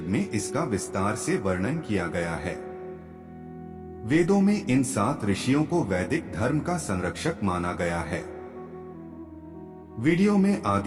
में इसका विस्तार से वर्णन किया गया है। वेदों में इन 7 ऋषियों को वैदिक धर्म का संरक्षक माना गया है। वीडियो में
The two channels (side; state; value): both; identical; correlation 1.00